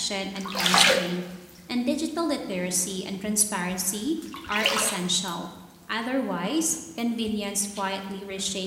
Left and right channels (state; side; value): identical; both; correlation 1.00